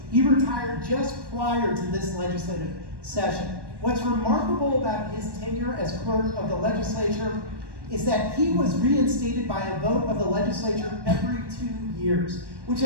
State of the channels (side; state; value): left; late; 1.1 ms